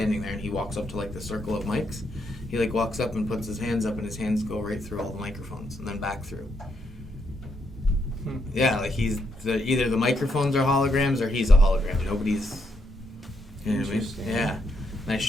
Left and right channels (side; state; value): both; normal; correlation 0.78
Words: there and he walks up to like the circle of mics. He like walks up and puts his hands up and his hands go right through all the microphones and then back through. Yeah, like he's either the microphones are holograms or he's a hologram. Nobody's. You know what I mean? Yeah. And I